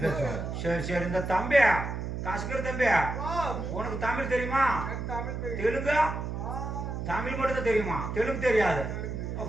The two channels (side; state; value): right; noise; hum, 5 dB below the sound